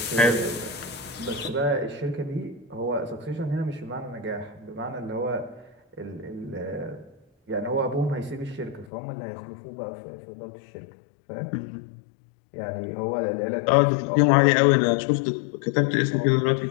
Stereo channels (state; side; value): drops out; right; at 8.8 s